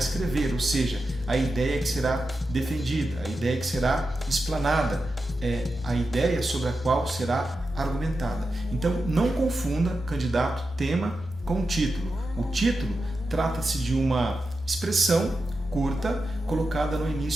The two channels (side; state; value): both; normal; correlation 0.90